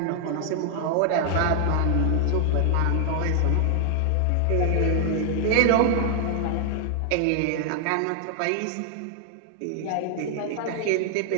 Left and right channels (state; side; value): different; both; correlation 0.00